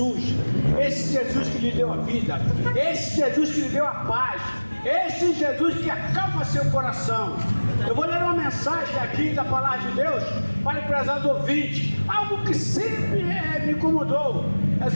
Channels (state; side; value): inverted; both; correlation -1.00